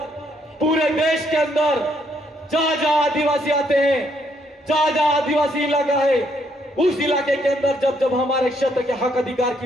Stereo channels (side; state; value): both; normal; correlation 0.72